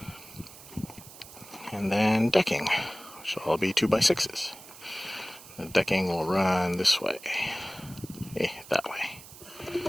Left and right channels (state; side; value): noise; right; hiss, 17 dB below the sound